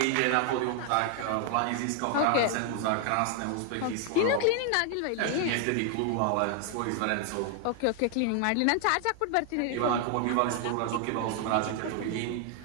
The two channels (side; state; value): both; different; correlation 0.00